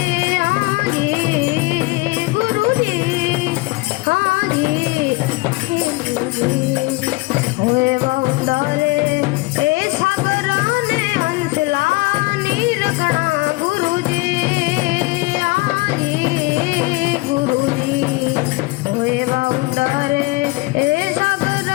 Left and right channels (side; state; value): right; quieter; 23.7 dB